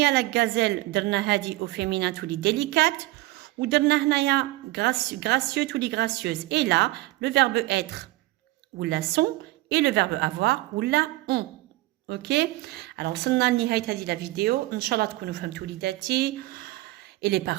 la gazelle درنا هادي au féminin تولي délicate. ودرنا هنايا gracieux تولي gracieuse. Et là, le verbe être ou la sont et le verbe avoir ou la ont. Ok? Alors وصلنا لنهاية هذه la vidéo. إن شاء الله تكونوا فهمتوا وليداتي. Et les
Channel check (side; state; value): left; quieter; 18.7 dB